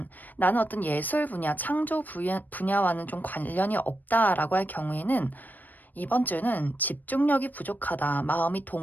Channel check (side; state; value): right; late; 0.086 ms